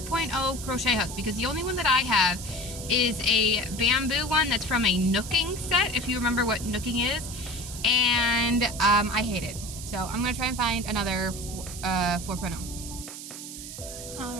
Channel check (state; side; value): noise; right; hiss, 10 dB below the sound